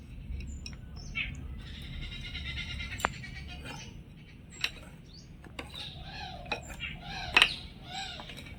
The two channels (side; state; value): both; identical; correlation 1.00